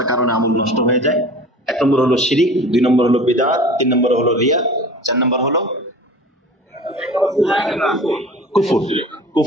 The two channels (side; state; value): both; normal; correlation 0.40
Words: কারণে আমল নষ্ট হয়ে যায়। 1 নম্বর হলো শিরিক, 2 নম্বর হলো বিদআত, 3 নম্বর হলো রিয়া, 4 নম্বর হলো